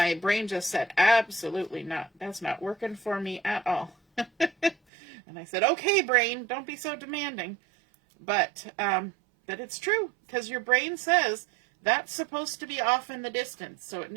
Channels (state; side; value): drops out; left; at 4.8 s